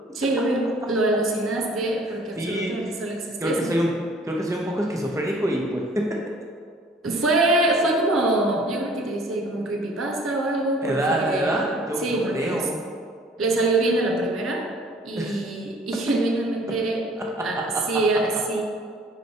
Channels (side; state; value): both; normal; correlation 0.53